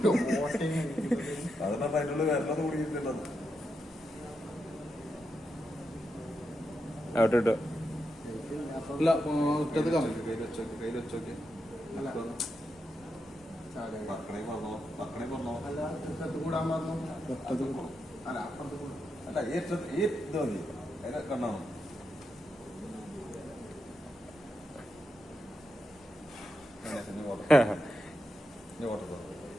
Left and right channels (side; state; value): both; normal; correlation 0.85